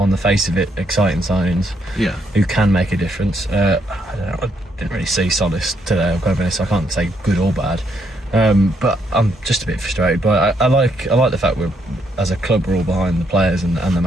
the face of it, exciting signings. Yeah. Who can make a difference. I don't know. I didn't really see Solis today. I'll go over this. I can't say good or bad. But I'm just a bit frustrated. But I like the fact we're, as a club, we're all behind the players and the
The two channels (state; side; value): normal; both; correlation 0.75